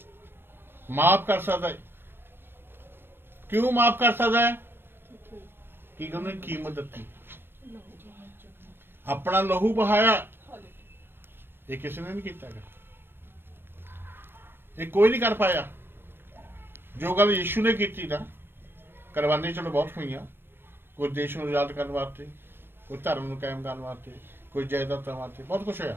ਕਿਉਂ ਮਾਫ ਕਰ ਸਕਦਾ ਹੈ ਕਿ ਉਹਨੇ ਕੀਮਤ ਦਿੱਤੀ ਆਪਣਾ ਲਹੂ ਬਹਾਇਆ ਇਹ ਕਿਸੇ ਨੇ ਨਹੀਂ ਕੀਤਾ ਇਹ ਕੋਈ ਨਹੀਂ ਕਰ ਪਾਇਆ ਜੋ ਗੱਲ ਯਿਸੂ ਨੇ ਕੀਤੀ ਨਾ ਕੁਰਬਾਨੀ ਚਲੋ ਬਹੁਤ ਹੋਈਆਂ ਕੋਈ ਦੇਸ਼ ਨੂੰ ਆਜ਼ਾਦ ਕਰਨ ਵਾਸਤੇ ਕੋਈ ਧਰਮ ਨੂੰ ਕਾਇਮ ਕਰਨ ਵਾਸਤੇ ਕੋਈ ਜਾਇਦਾਦਾਂ ਵਾਸਤੇ ਬਹੁਤ ਕੁਛ ਹੋਇਆ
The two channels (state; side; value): late; left; 0.10 ms